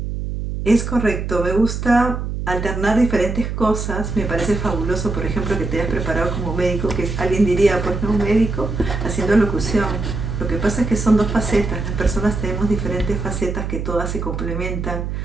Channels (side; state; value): right; noise; hum, 4 dB below the sound